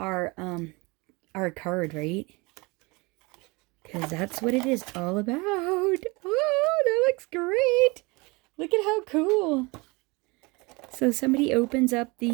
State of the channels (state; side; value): quieter; left; 26.0 dB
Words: card, right? Because that's what it is all about. Oh, that looks great. Look at how cool. So somebody opens up